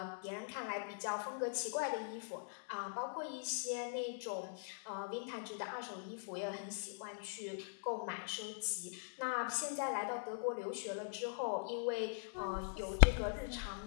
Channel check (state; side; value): silent; right; digital silence